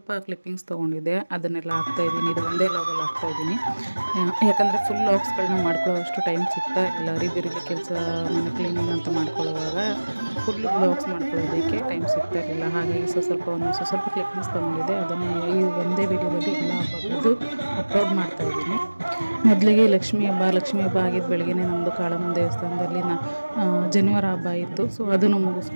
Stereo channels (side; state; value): both; inverted; correlation -1.00